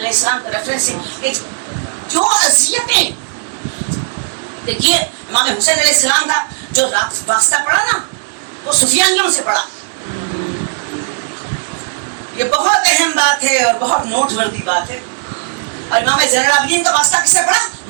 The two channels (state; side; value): silent; left; digital silence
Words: السلام کا ریفرنس ہے جو اذیتیں. دیکھیے امام حسین علیہ السلام کا جو واسطہ پڑا نا وہ سفیانیوں سے پڑا. یہ بہت اہم بات ہے اور بہت نوٹ وردی بات ہے. اور امام زین العابدین کا واسطہ کس سے پڑا؟